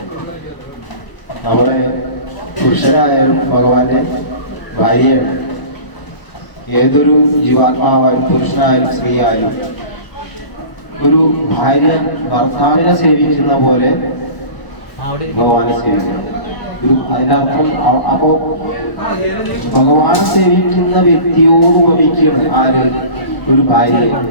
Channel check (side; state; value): right; late; 1.0 ms